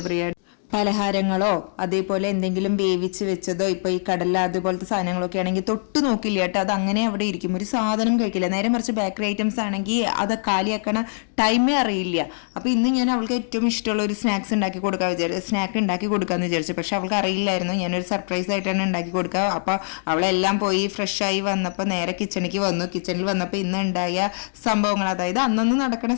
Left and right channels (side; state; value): right; silent; digital silence